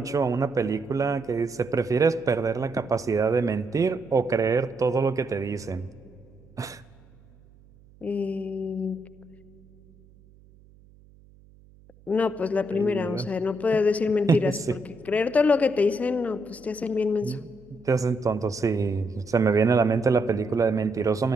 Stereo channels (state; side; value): noise; right; hum, 27 dB below the sound